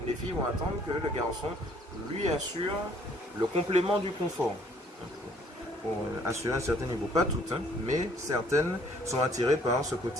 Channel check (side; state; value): both; normal; correlation 0.60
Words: les filles vont attendre que le garçon lui assure le complément du confort. Pour assurer un certain niveau. Pas toutes, hein, mais certaines sont attirées par ce